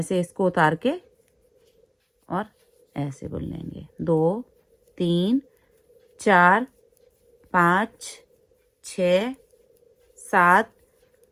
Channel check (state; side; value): identical; both; correlation 1.00